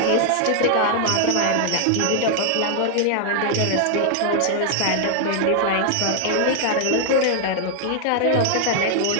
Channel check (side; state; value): both; different; correlation 0.00